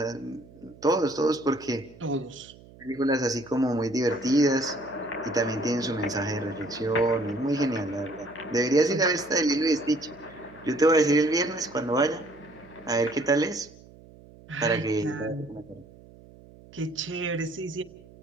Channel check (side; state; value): right; noise; hum, 22 dB below the sound